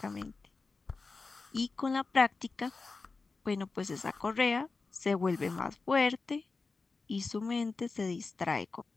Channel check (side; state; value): right; quieter; 4.1 dB